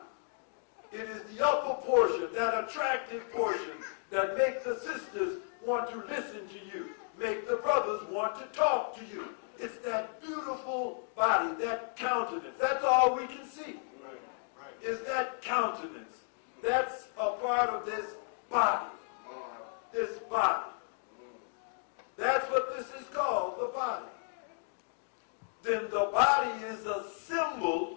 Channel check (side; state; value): right; silent; 55 dB below the other